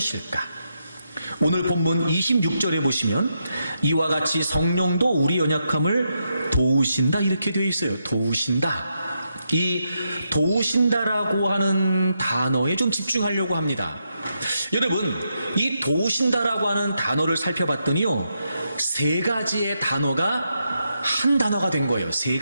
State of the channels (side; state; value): both; inverted; correlation -0.83